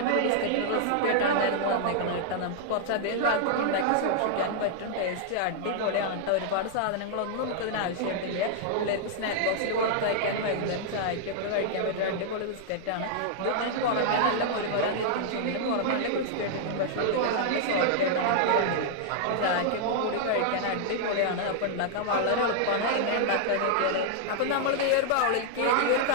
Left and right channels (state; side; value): different; both; correlation -0.01